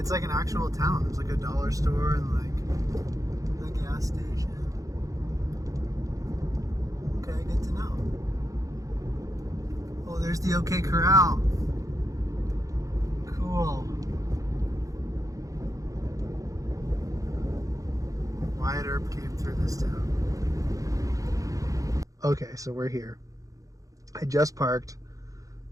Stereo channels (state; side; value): late; left; 0.16 ms